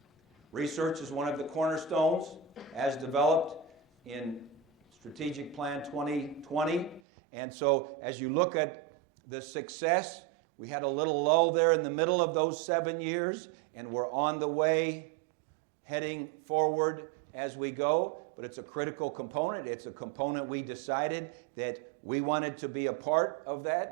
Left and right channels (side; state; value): left; drops out; at 7.0 s